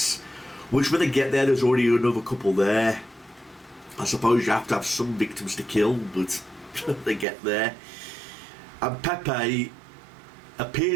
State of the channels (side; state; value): left; drops out; at 7.2 s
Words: which when they get there, there's already another couple there. I suppose you have to have some victims to kill, but they get there. And Pepe